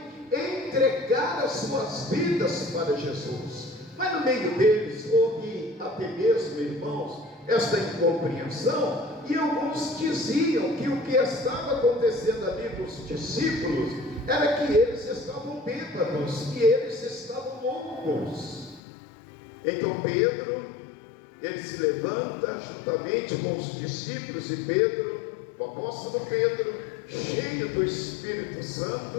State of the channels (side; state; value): right; drops out; at 18.8 s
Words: entregar as suas vidas para Jesus. Mas no meio deles houve até mesmo, irmãos, esta incompreensão, e alguns diziam que o que estava acontecendo ali com os discípulos era que eles estavam bêbados, que eles estavam loucos. Então Pedro, ele se levanta juntamente com os discípulos, e Pedro, o apóstolo Pedro, cheio do Espírito